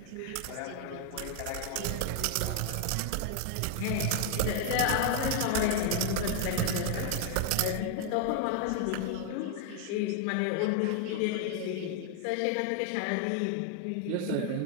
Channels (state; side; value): different; both; correlation 0.00